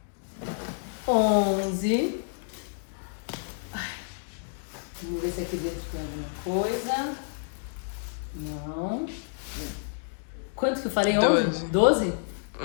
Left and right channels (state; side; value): silent; right; digital silence